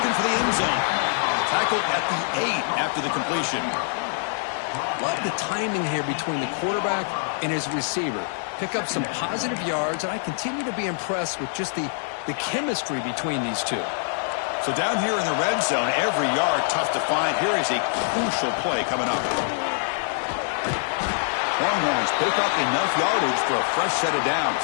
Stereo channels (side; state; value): right; silent; 62 dB below the other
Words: for the end zone. Tackled at the 8 after the completion. Love the timing here between the quarterback and his receiver. Pick up some positive yards, and I continue to be impressed with just the chemistry between these two. So down here in the red zone, every yard tough to find. Here is a crucial play coming up. Longhorns pick up enough yardage for a fresh set of downs.